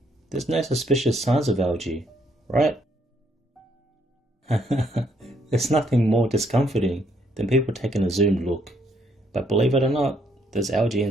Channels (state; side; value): normal; both; correlation 0.71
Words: There's no suspicious signs of algae, right? There's nothing more discomforting than people taking a zoomed look, but believe it or not, there's algae